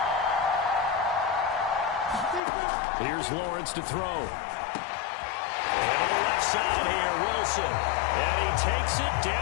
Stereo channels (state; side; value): drops out; right; at 2.4 s